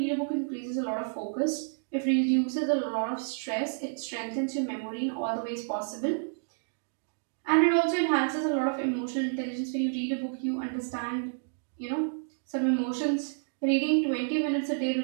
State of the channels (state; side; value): silent; left; digital silence